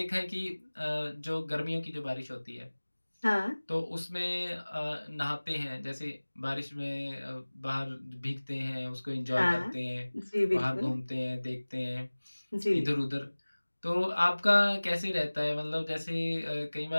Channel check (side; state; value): both; inverted; correlation -1.00